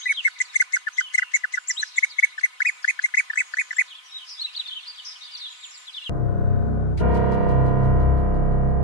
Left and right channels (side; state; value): right; late; 4.0 ms